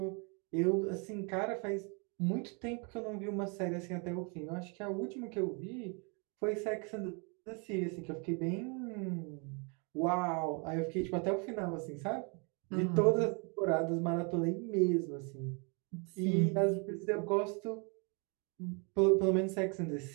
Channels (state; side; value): quieter; left; 34.2 dB